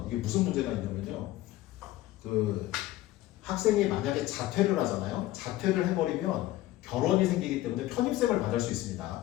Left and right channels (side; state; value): right; quieter; 16.0 dB